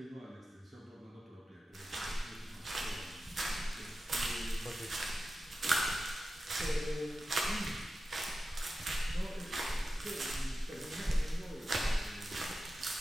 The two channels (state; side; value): normal; both; correlation 0.92